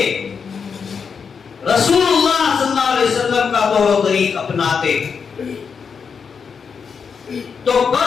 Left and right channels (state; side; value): quieter; right; 6.1 dB